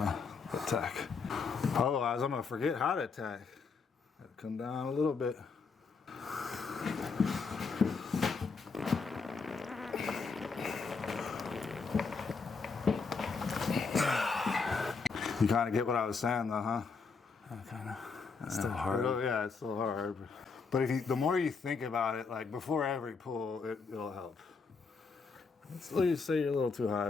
attack. Otherwise, I'm gonna forget how to attack. Come down a little bit. You kind of get what I was saying, though, huh? Kind of. It's still hard. Yeah, it's still hard. But the more you think about it, like before every pull, it'll help. Let's let you say you're a little too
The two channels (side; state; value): right; quieter; 4.9 dB